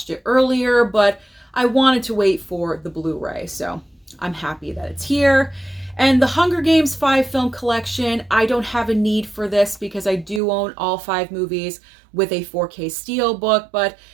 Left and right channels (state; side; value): drops out; left; at 10.4 s